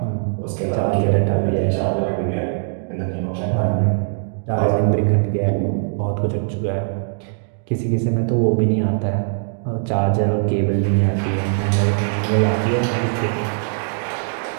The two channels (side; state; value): left; silent; digital silence